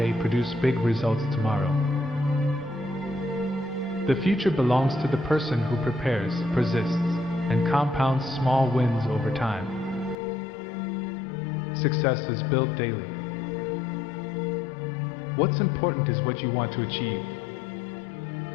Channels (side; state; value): right; drops out; at 10.2 s